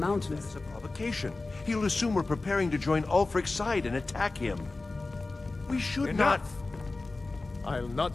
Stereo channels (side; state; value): right; quieter; 3.4 dB